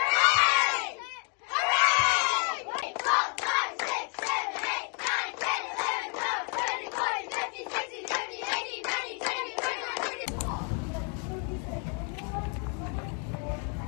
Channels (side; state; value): right; quieter; 39.2 dB